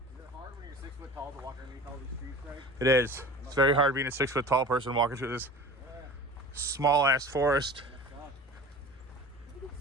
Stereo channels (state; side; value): normal; both; correlation 0.39